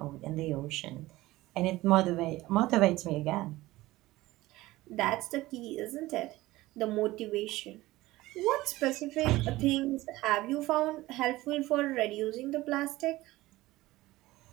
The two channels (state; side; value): quieter; left; 18.2 dB